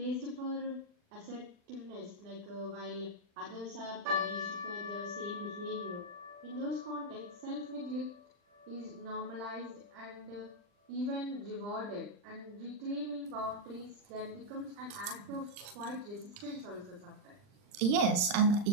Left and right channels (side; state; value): left; late; 40 ms